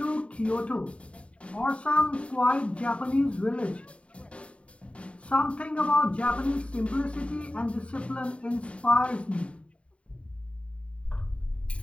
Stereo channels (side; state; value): right; late; 0.061 ms